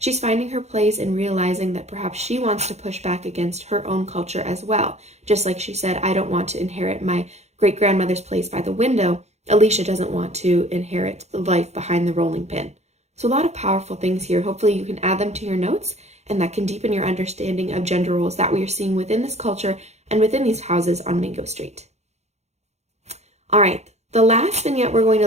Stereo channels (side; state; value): left; late; 0.32 ms